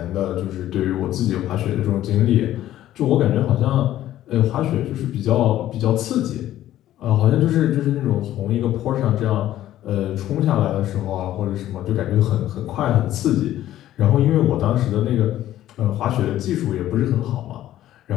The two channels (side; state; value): right; quieter; 13.2 dB